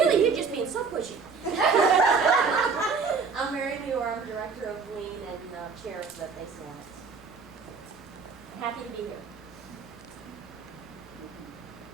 you're just being so pushy. I'm Mary Muir, I'm director of Lean and chair of the Base Alliance. Happy to be here.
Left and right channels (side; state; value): left; quieter; 5.1 dB